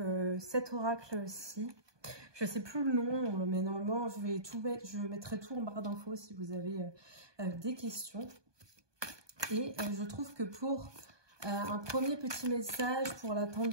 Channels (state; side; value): late; left; 1.2 ms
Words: cet oracle-ci. Je sais plus le nom, mais normalement je vais tout mettre, je mettrai tout en barre d'infos si vous avez des questions. Et je trouve que pour un premier petit message pour la